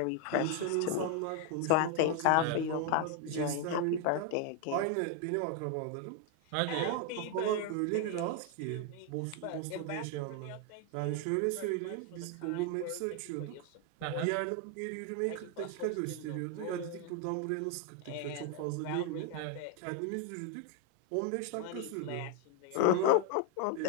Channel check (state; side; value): different; both; correlation 0.01